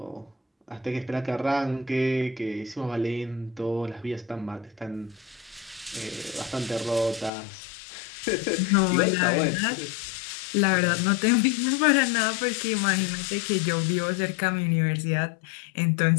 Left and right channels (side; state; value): right; drops out; at 7.3 s